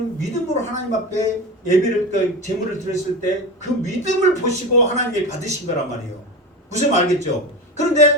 믿음으로 하나님 앞에 제물을 드렸을 때 그 믿음을 보시고 하나님이 받으신 거란 말이에요. 무슨 말 알겠죠?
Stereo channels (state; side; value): normal; both; correlation 0.25